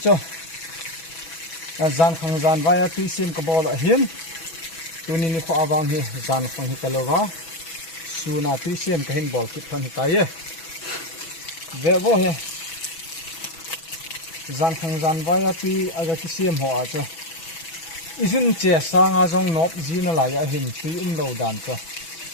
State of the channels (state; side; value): late; right; 6.1 ms